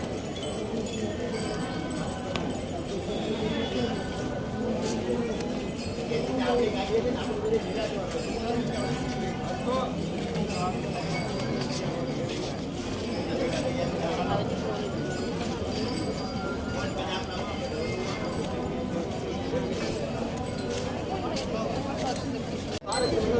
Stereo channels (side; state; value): both; identical; correlation 1.00